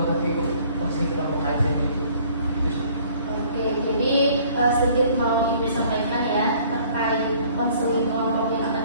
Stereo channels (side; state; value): both; inverted; correlation -0.56